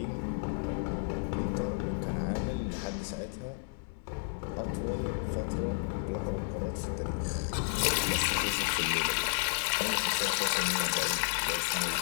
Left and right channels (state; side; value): silent; right; 56 dB below the other